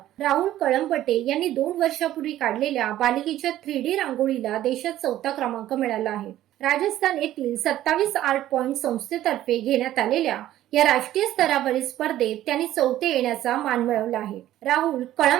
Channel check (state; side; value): quieter; left; 13.4 dB